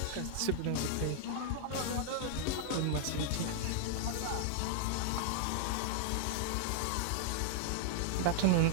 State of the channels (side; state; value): both; different; correlation -0.01